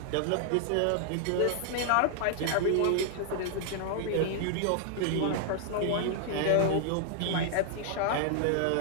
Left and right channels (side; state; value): both; different; correlation 0.00